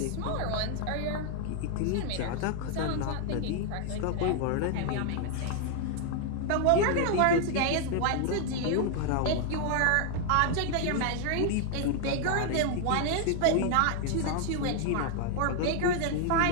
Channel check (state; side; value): different; both; correlation 0.00